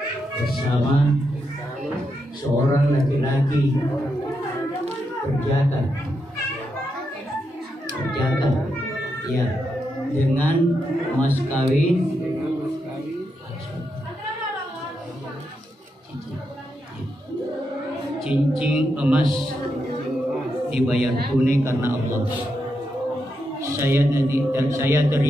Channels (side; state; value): both; normal; correlation 0.84